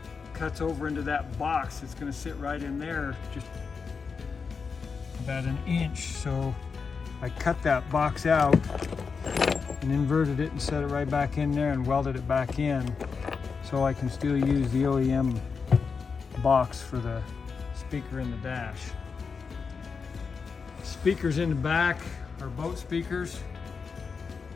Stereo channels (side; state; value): right; quieter; 5.3 dB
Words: cuts over into that box. It's gonna sit right in there, just about 1 inch. So I cut that box out and inverted it and set it right back in there and welded it back in so I can still use the OEM box for the speaker in the dash. Speakers in the back are boat speakers.